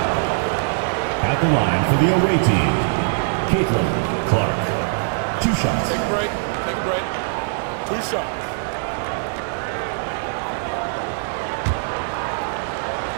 At the line for the away team, CaitlinClark. 2 shots. Take a break. Take a break. 2 shots.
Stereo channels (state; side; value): silent; left; digital silence